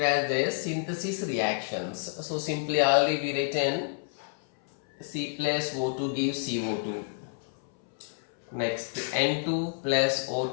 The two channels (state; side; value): silent; right; 59 dB below the other